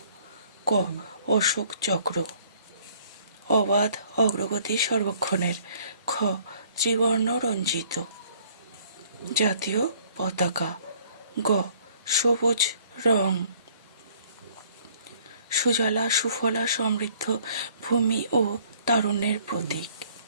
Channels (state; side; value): inverted; both; correlation -0.59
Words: ক. অশোক চক্র। অবাধ অগ্রগতি সর্বক্ষণের। খ. ত্রিবর্ণ রঞ্জিত জাতীয় পতাকা। গ. সবুজ রং সুজলা সুফলা সমৃদ্ধ ভূমি ও তারুণ্যের প্রতীক।